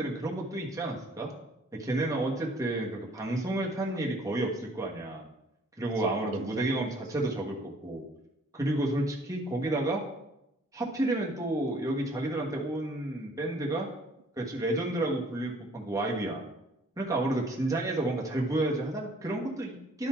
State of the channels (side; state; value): both; normal; correlation 0.58